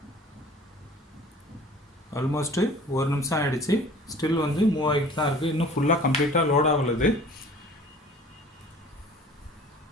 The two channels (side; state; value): both; normal; correlation 0.47